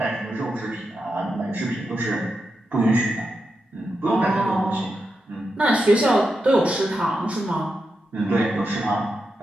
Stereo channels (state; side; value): normal; both; correlation 0.87